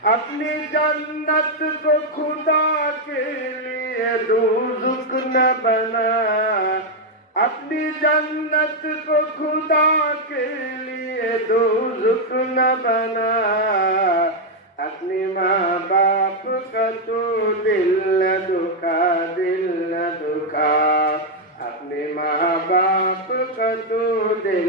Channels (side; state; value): both; normal; correlation 0.01